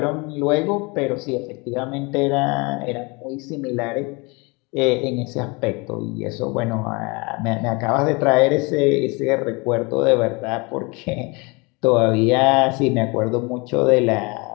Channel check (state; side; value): quieter; right; 27.8 dB